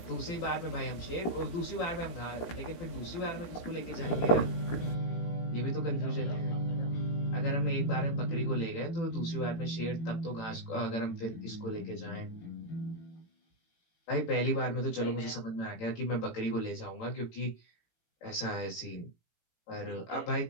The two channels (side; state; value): right; late; 18 ms